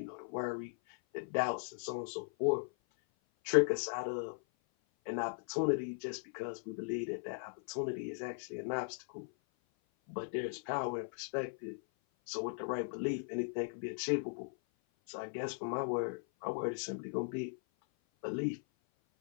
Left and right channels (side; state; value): right; silent; 52 dB below the other